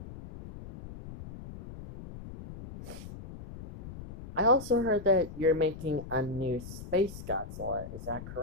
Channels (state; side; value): noise; left; rumble, 13 dB below the sound